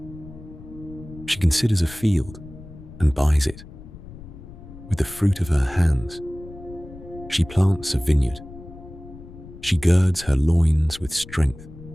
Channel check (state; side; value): noise; left; rumble, 16 dB below the sound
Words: She considers a field and buys it. With the fruit of her hands, she plants a vineyard. She girds her loins with strength